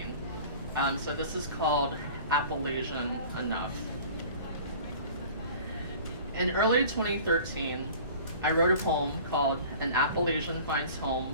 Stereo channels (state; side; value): inverted; both; correlation -0.44